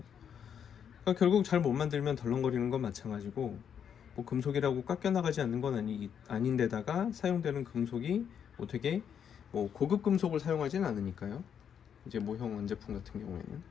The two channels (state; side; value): quieter; right; 8.1 dB